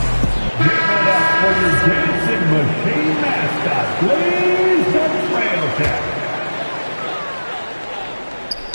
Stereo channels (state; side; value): inverted; both; correlation -1.00